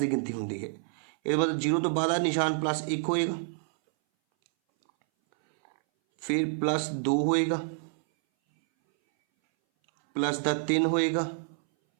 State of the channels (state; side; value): silent; left; 59 dB below the other